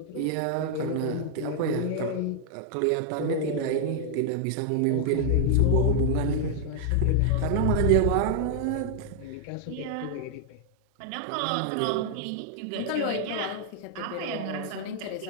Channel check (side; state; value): both; different; correlation 0.00